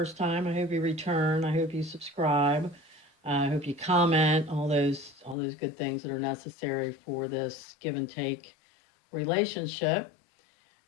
time, I hope you return. I hope you subscribe. I hope you comment. All those good things that are necessary for this give and take relationship.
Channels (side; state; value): right; drops out; at 5.4 s